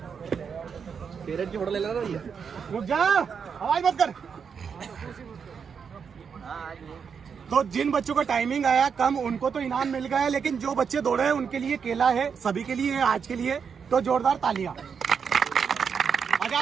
पेरेंट की फोटो ले लेना भैया। रुक जा, आवाज मत कर। तो जिन बच्चों का टाइमिंग आया कम, उनको तो इनाम मिल गया है, लेकिन जो बच्चे दौड़े हैं उनके लिए केला है, सभी के लिए है आज के लिए, तो जोरदार तालियां। आ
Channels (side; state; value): left; quieter; 6.5 dB